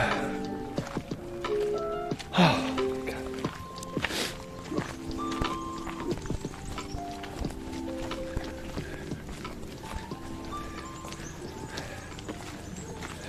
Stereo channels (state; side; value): identical; both; correlation 1.00